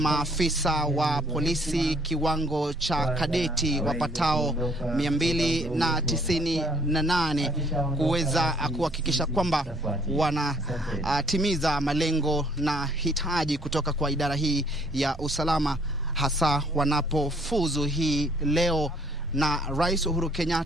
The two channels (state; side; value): normal; both; correlation 0.62